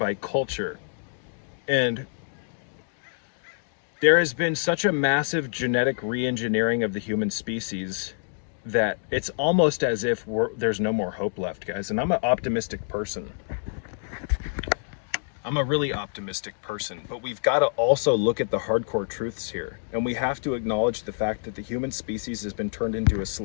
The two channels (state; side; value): silent; right; digital silence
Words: culture, and there has been such a massive genetic re-engineering of the human species that it's almost as if there's no more hope left, guys. And I'm an optimistic person. I'm a really optimistic person, but we've got to also look at the hardcore truths here. And we have to acknowledge the fact that the human species has been turned into a